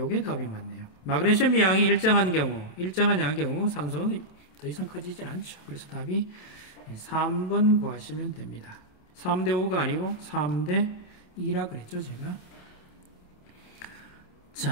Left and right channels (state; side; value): late; right; 27 ms